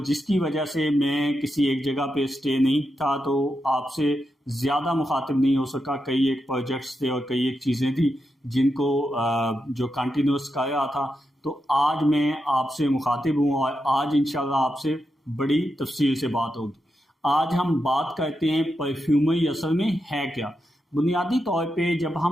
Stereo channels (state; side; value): normal; both; correlation 0.86